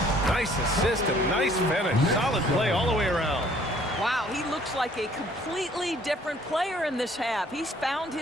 Nice assist and nice finish. Solid play all the way around. Wow, he looks like a completely different player in this half. He's found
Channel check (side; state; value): both; normal; correlation 0.58